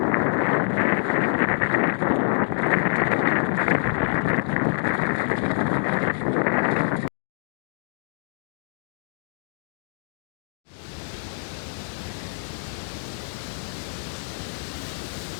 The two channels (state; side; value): silent; right; 61 dB below the other